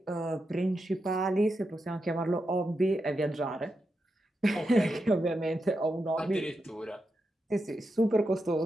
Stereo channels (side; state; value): both; normal; correlation 0.87